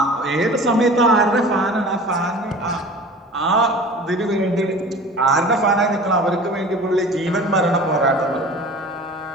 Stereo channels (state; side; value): normal; both; correlation 0.41